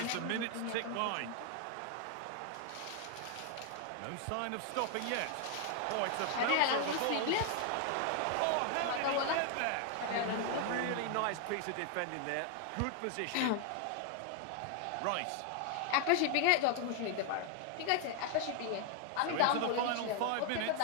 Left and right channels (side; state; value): both; different; correlation 0.00